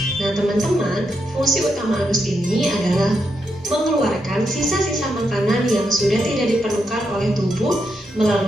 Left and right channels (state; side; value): normal; both; correlation 0.82